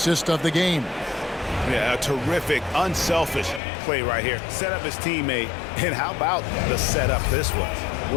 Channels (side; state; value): right; drops out; at 3.6 s